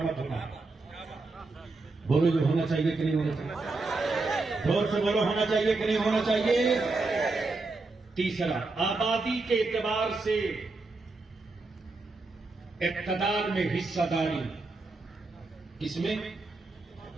मत होना। बोलो, जो होना चाहिए कि नहीं होना चाहिए? जोर से बोलो, होना चाहिए कि नहीं होना चाहिए? तीसरा, आबादी के एतबार से इक़्तिदार में हिस्सेदारी। किसमें?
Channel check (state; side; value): quieter; left; 3.5 dB